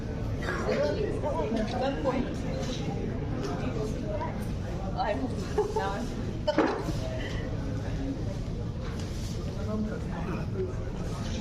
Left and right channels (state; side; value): identical; both; correlation 1.00